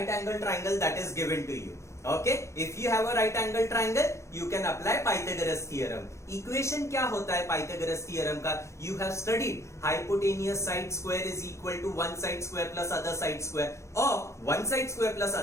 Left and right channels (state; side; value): late; right; 0.14 ms